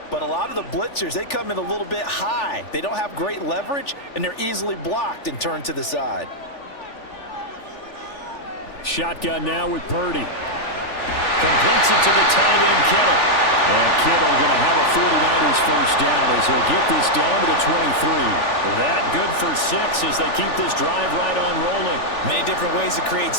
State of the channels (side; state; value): right; late; 3.4 ms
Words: But a lot of the blitzers, they come in a little bit high. They don't have great leverage, and they're easily blocked and turned to the side. Shotgun now with Purdy. Completes it to the tight end, Kittle. And Kittle going to have a 49ers first down as he'll get this down to the 23. That good for 6 as they keep this drive right on rolling. Many different ways to create